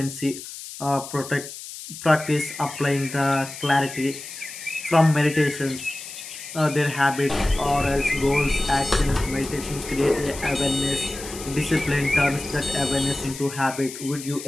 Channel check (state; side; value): noise; left; hiss, 12 dB below the sound